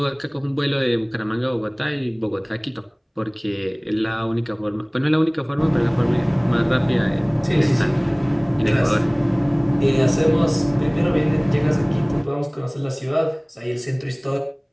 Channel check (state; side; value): identical; both; correlation 1.00